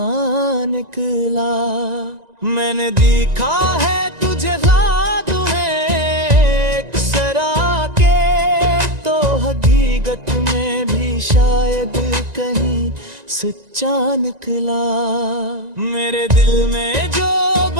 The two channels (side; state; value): left; late; 1.9 ms